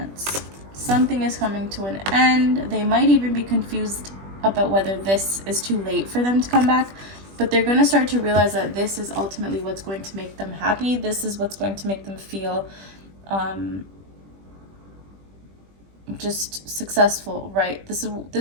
Something is coming to an end. They might even be confused about whether this is too late for them to come back, but they're going to start to realize that this is ultimately what's going to make them happy. This is what's going to make them feel just successful, right? This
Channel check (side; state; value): left; late; 20 ms